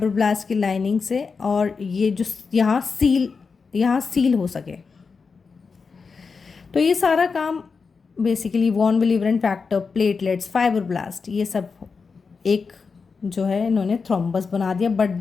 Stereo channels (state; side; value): quieter; right; 5.0 dB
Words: की लाइनिंग से और ये जो यहाँ सील हो सके. तो ये सारा काम basically von Willebrand factor, platelets, fibroblast, ये सब एक जो है इन्होंने थ्रोम्बस बना दिया. But